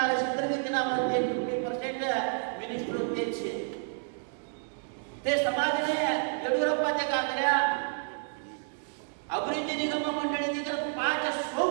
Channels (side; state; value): left; silent; digital silence